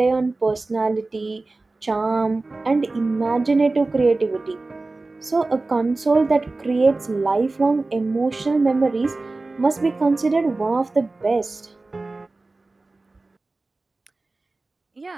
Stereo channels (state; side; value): quieter; left; 3.3 dB